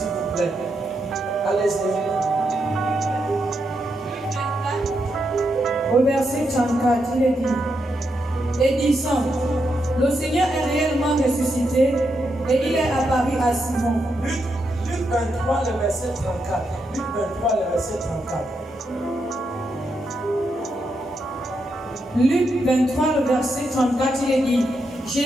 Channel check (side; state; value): both; normal; correlation 0.82